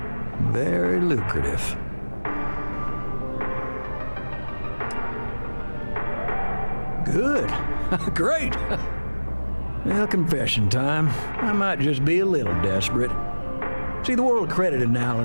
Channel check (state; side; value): inverted; both; correlation -1.00